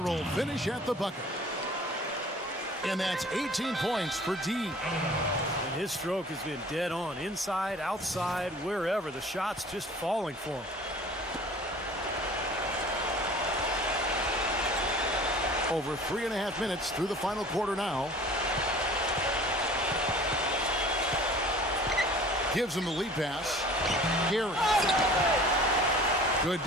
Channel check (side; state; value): both; normal; correlation 0.47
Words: finish at the bucket. And that's 18 points for D. And his stroke has been dead on. Inside, outside, wherever. The shot's just falling for him. Over 3.5 minutes through the final quarter now. Gives him the lead pass. Gary. Good